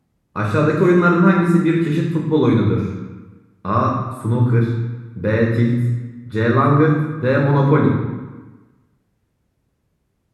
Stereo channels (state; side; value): identical; both; correlation 1.00